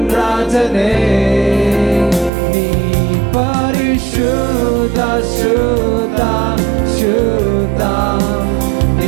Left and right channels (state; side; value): drops out; left; at 2.3 s